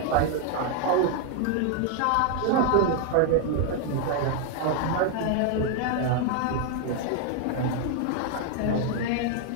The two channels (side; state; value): both; different; correlation 0.00